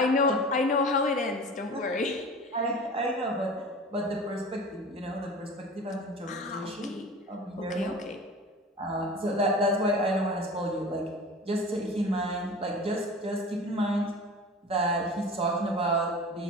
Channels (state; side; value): normal; both; correlation 0.37